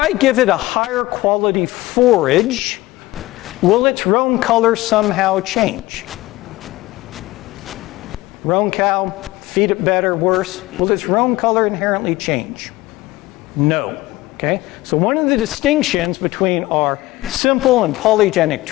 give it a higher quality forage, will its roan color somehow change? Roan cow, feed it better, worse. Will its roan color inherently change? No. Okay? So one of the distinctions between our simple and polygenic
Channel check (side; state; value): right; quieter; 18.9 dB